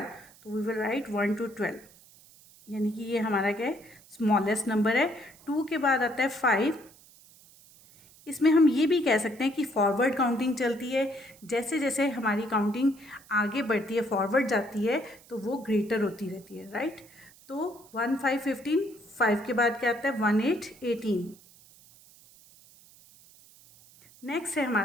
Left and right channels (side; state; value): right; noise; hiss, 25 dB below the sound